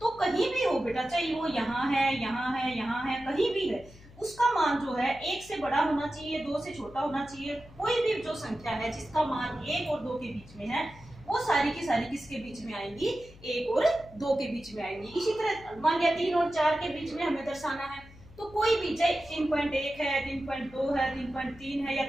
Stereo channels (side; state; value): left; noise; hum, 21 dB below the sound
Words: कहीं भी हो बेटा, चाहे वो यहाँ है, यहाँ है, यहाँ है, कहीं भी है, उसका मान जो है 1 से बड़ा होना चाहिए, 2 से छोटा होना चाहिए। कोई भी जो संख्या है जिसका मान 1 और 2 के बीच में है वो सारी की सारी किसके बीच में आएंगी? 1 और 2 के बीच में आएंगी। इसी तरह मान लिया 3 और 4 के बीच में हमें दर्शाना है तो कोई भी, चाहे 3.1 है, 3.2 है, 3.3 है या